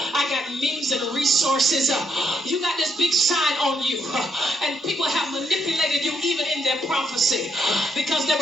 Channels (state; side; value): normal; both; correlation 0.76